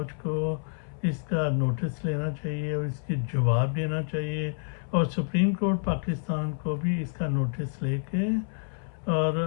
کو اس کا نوٹس لینا چاہیے اور اس کی جواب دینا چاہیے، اور سپریم کورٹ پاکستان کو بھی اس کا نوٹس لے کے اور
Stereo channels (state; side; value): silent; right; 59 dB below the other